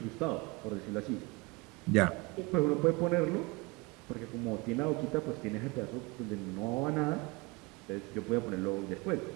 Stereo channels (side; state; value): left; quieter; 25.6 dB